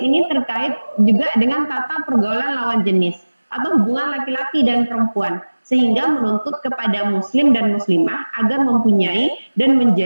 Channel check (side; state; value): both; inverted; correlation -1.00